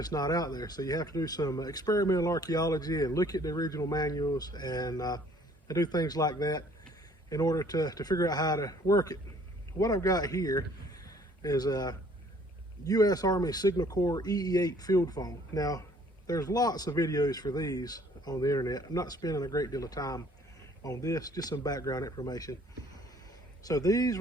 not out there. So you have to do some experimental archaeology and look at the original manuals and do things like that in order to figure out how to work it. What I've got here is a U.S. Army Signal Corps EE-8 field phone. Now, there's lots of videos for these on the internet. I'm not spending a great deal of time on this, just some background information. So these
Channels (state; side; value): normal; both; correlation 0.58